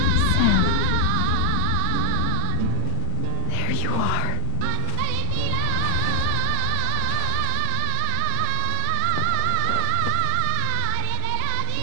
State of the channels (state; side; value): different; both; correlation -0.01